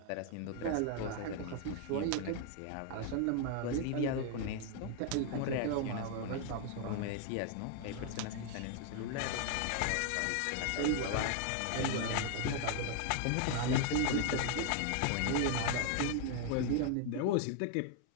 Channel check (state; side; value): different; both; correlation 0.00